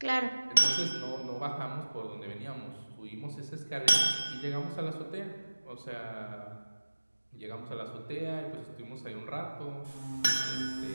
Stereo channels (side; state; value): both; inverted; correlation -1.00